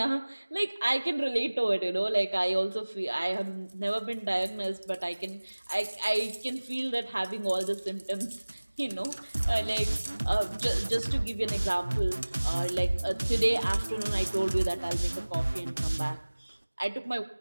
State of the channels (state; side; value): inverted; both; correlation -1.00